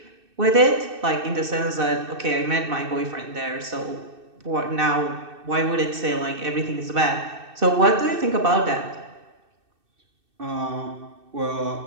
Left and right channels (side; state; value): left; late; 2.6 ms